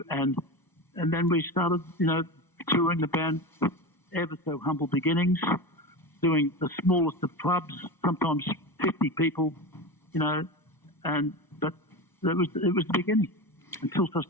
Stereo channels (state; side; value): late; right; 1.0 ms